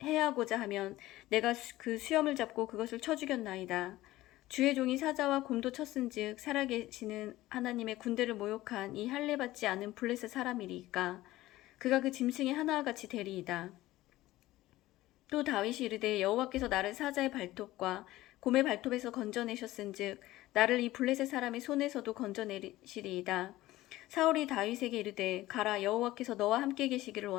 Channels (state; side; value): quieter; right; 16.8 dB